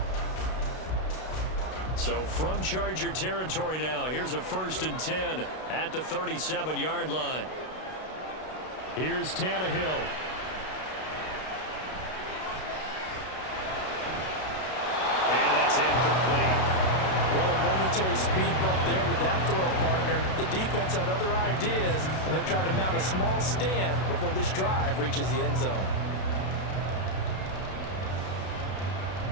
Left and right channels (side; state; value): right; late; 32 ms